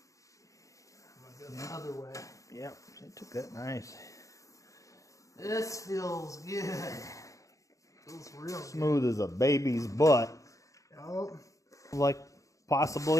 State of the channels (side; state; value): right; late; 0.16 ms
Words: The other way. Yep, they took that nice. This feels good. Feels real Smooth as a baby's butt. Oh. Like